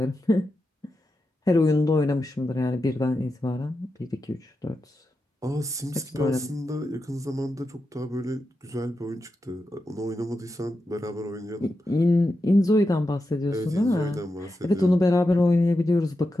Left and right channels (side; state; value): both; normal; correlation 0.89